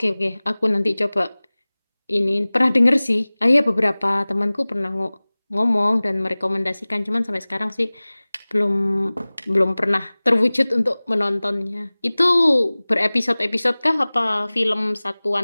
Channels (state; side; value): inverted; both; correlation -1.00